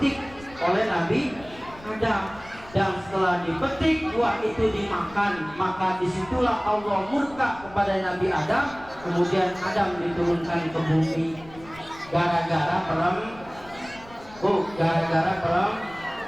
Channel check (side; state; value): left; noise; rumble, 21 dB below the sound